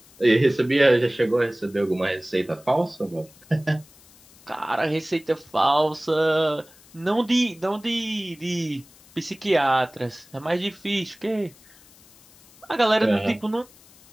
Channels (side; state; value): left; noise; hiss, 26 dB below the sound